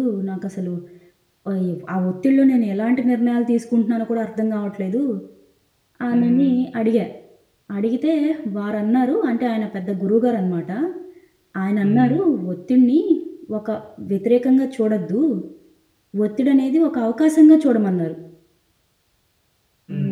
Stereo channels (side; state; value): both; identical; correlation 1.00